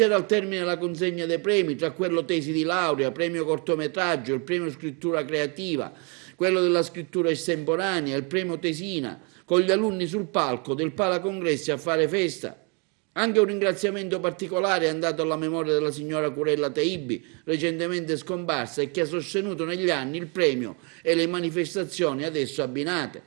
al termine della consegna dei premi, tra quello tesi di laurea, premio cortometraggio, il premio scrittura creativa, quello della scrittura estemporanea, il premio tesina, con gli alunni sul palco del Pala Congressi a fare festa. Anche un ringraziamento particolare è andato alla memoria della signora Curella Teibi, recentemente scomparsa e che ha sostenuto negli anni il premio e le manifestazioni adesso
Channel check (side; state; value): left; quieter; 34.3 dB